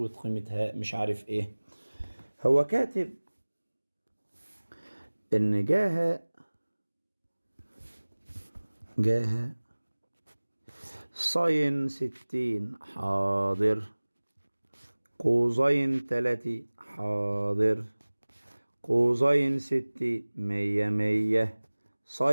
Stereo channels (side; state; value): both; inverted; correlation -1.00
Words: قيمة هاء، مش عارف ايه. هو كاتب ان جاها ساين 60 حاضر. قوسين 30 حاضر. قوسين 60 100.